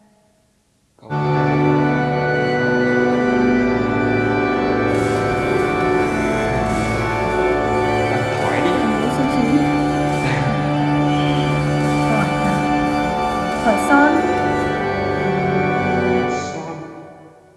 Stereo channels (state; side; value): identical; both; correlation 1.00